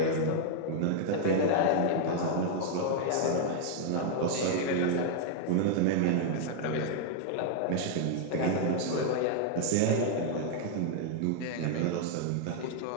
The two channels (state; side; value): different; both; correlation 0.00